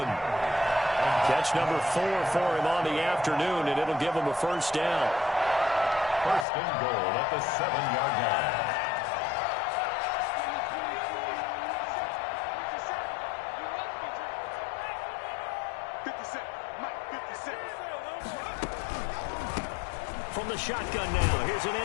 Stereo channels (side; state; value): right; drops out; at 6.5 s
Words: Catch number 4 for him on the afternoon, and it'll give him a first down. First and goal at the 7-yard line. From the shotgun now, here's an